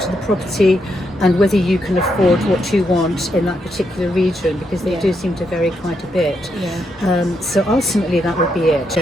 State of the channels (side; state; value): both; normal; correlation 0.80